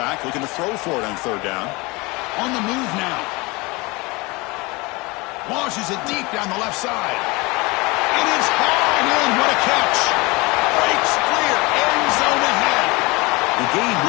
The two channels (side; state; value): right; quieter; 24.7 dB